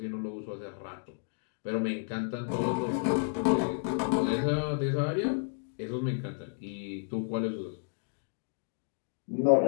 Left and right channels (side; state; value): right; silent; digital silence